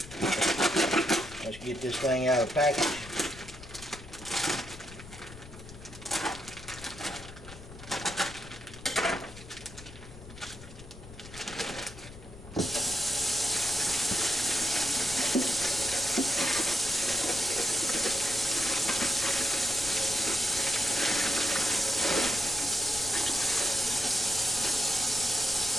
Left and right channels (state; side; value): noise; left; rumble, 16 dB below the sound